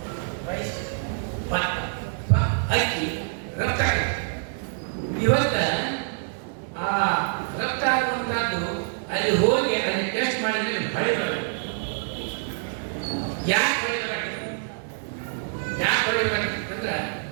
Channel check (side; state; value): left; silent; 61 dB below the other